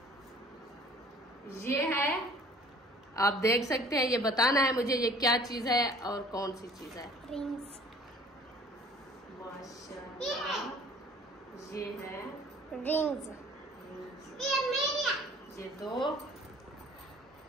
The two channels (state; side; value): normal; both; correlation 0.51